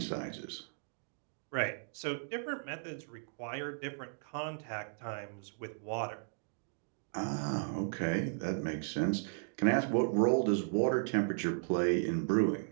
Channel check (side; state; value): left; silent; digital silence